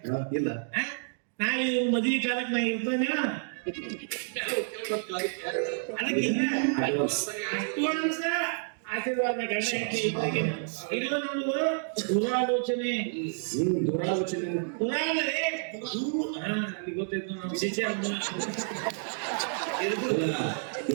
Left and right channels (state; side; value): silent; left; digital silence